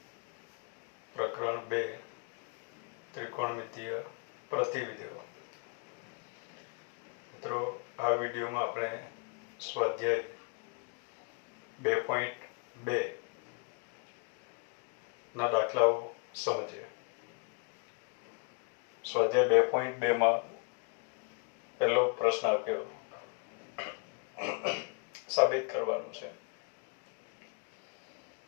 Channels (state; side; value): quieter; right; 35.2 dB